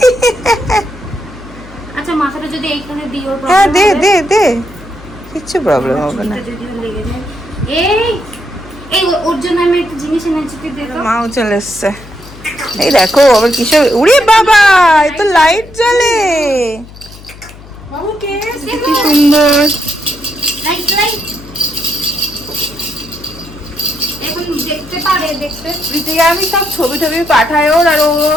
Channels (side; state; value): left; noise; hum, 18 dB below the sound